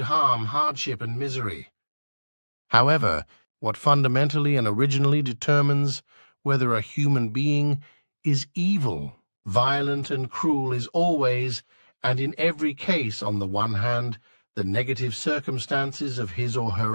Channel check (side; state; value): both; inverted; correlation -1.00